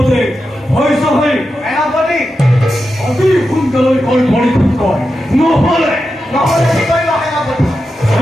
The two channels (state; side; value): normal; both; correlation 0.89